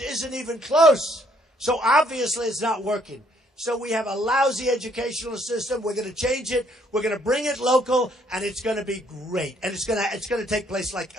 isn't even close. So obviously it's not working. So we have a lousy educational system. We're going to change it. We're going to bring it local, and it's going to be great. And it's going to take place like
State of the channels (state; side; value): normal; both; correlation 0.66